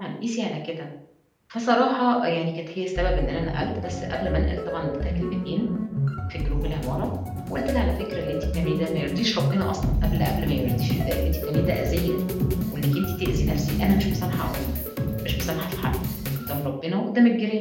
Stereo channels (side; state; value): both; identical; correlation 1.00